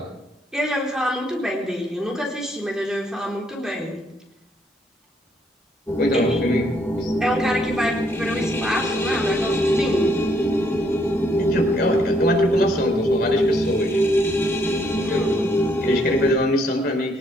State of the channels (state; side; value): normal; both; correlation 0.70